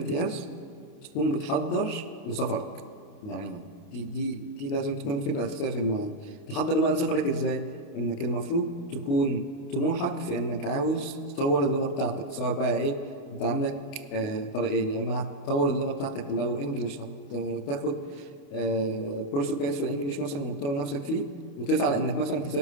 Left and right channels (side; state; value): right; late; 28 ms